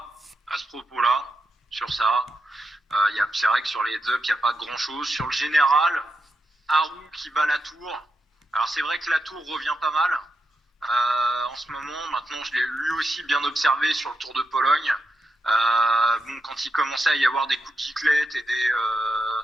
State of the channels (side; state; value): both; normal; correlation 0.86